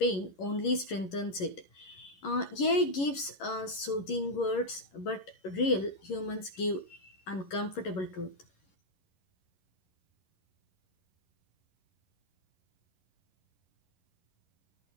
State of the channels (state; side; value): late; right; 11 ms